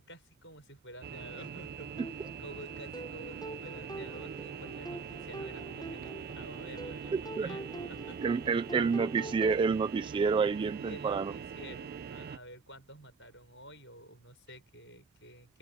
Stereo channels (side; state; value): left; quieter; 4.7 dB